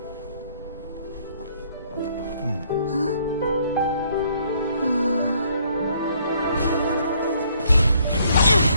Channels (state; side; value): inverted; both; correlation -0.65